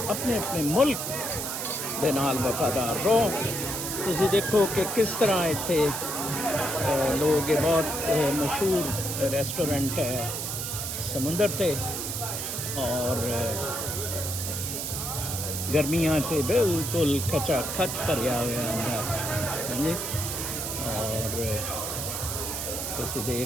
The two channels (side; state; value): right; noise; hiss, 4 dB below the sound